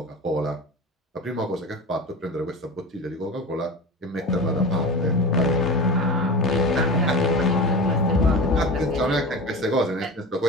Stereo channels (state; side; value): normal; both; correlation 0.30